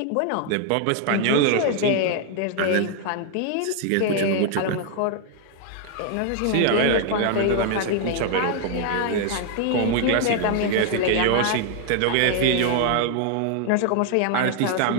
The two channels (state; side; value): different; both; correlation 0.00